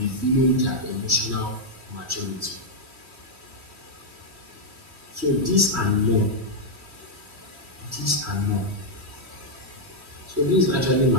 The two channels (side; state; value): left; late; 3.1 ms